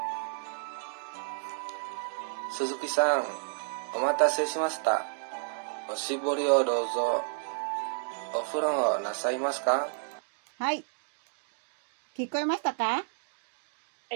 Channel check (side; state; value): left; silent; digital silence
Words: 鈴木さん、お待たせしました。おしぼりをどうぞ。お風呂なさいますか？はい。聞こえましたか？は